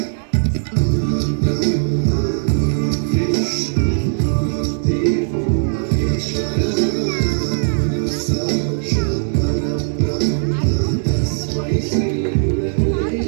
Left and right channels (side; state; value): left; silent; digital silence